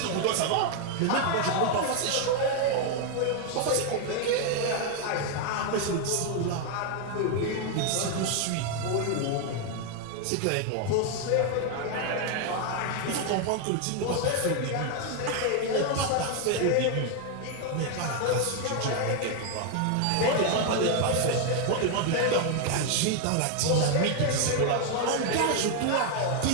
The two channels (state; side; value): different; both; correlation 0.01